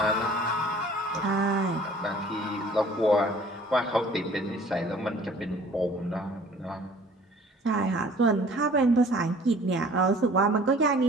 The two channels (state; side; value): normal; both; correlation 0.51